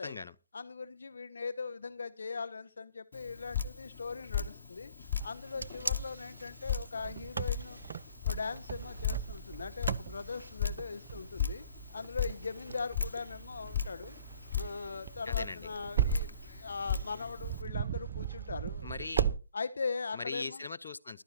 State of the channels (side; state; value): both; inverted; correlation -0.59